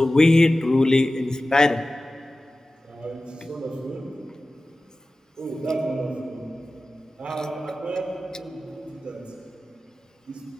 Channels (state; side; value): normal; both; correlation 0.96